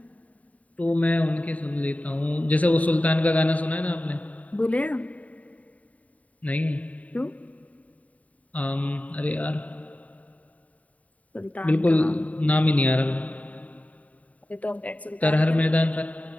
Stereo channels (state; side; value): late; right; 0.069 ms